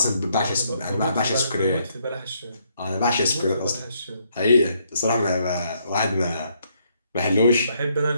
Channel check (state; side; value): inverted; both; correlation -0.73